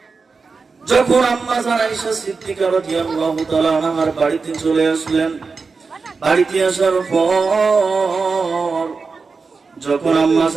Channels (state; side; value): quieter; left; 4.6 dB